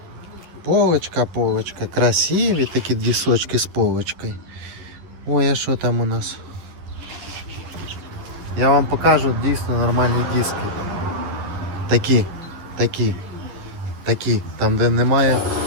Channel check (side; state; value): left; late; 11 ms